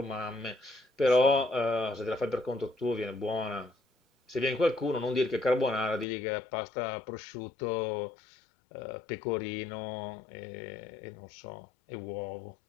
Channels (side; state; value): right; drops out; at 6.1 s